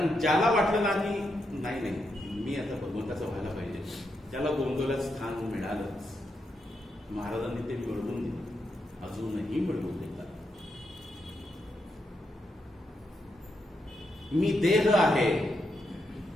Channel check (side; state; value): both; normal; correlation 0.82